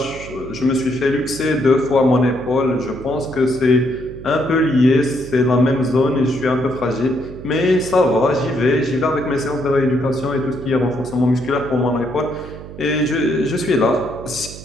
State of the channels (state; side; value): noise; right; hum, 14 dB below the sound